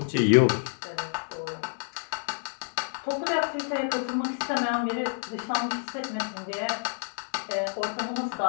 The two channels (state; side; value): silent; right; 59 dB below the other